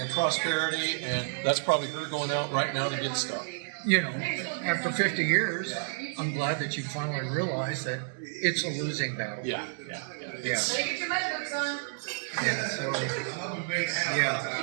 prosperity, and that's probably her going out right now to get stuff. You know, after 50 years, I'm glad that you finally realized that it's a losing battle. Yeah. Yeah. Get your notebooks on. Yeah. So,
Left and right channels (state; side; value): silent; left; digital silence